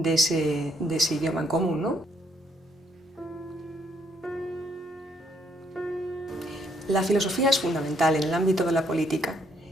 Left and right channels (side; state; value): both; normal; correlation 0.69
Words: ese idioma en común, ¿no? La filosofía es fundamental en el ámbito de la política.